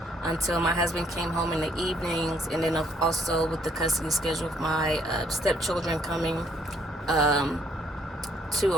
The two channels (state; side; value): normal; both; correlation 0.67